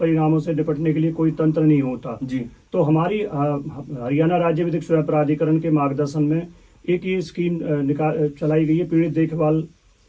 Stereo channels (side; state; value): both; identical; correlation 1.00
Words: से निपटने के लिए कोई तंत्र नहीं होता। जी। तो हमारी हरियाणा राज्य विधिक सेवा प्राधिकरण के मार्गदर्शन में एक ये स्कीम चलाई गई है, पीड़ित देखभाल